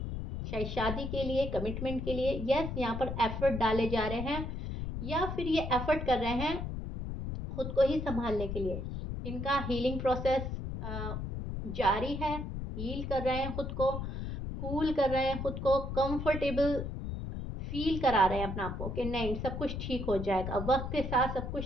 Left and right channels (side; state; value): left; noise; rumble, 5 dB below the sound